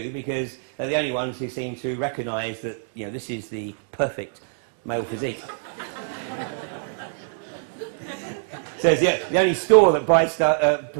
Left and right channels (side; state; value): left; silent; digital silence